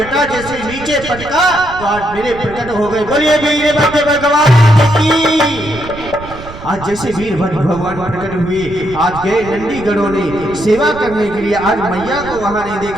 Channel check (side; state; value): right; noise; rumble, 14 dB below the sound